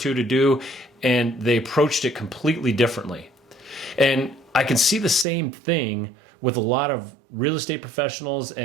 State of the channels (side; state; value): left; drops out; at 5.2 s